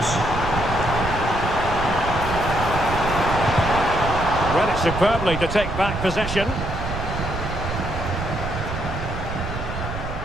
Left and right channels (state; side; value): noise; right; rumble, 6 dB below the sound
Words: Read it superbly to take back possession.